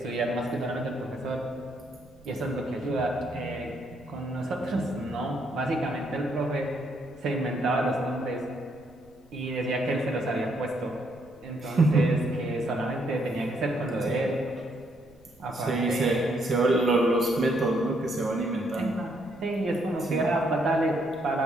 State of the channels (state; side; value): noise; right; rumble, 29 dB below the sound